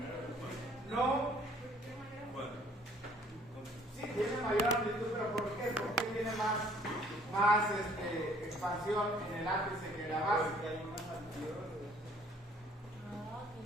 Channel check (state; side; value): normal; both; correlation 0.58